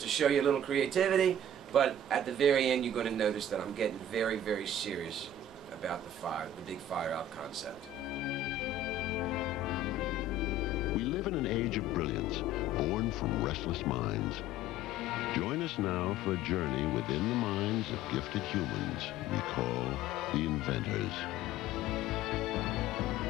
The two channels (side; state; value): right; noise; rumble, 24 dB below the sound